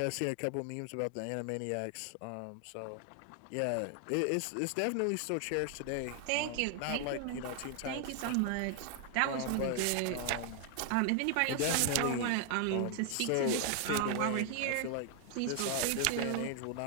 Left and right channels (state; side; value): different; both; correlation 0.00